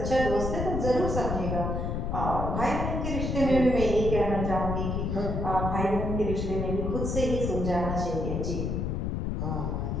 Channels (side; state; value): left; noise; rumble, 1 dB below the sound